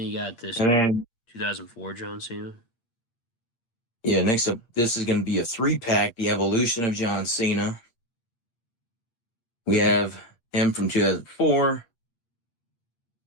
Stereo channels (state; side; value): late; right; 8.6 ms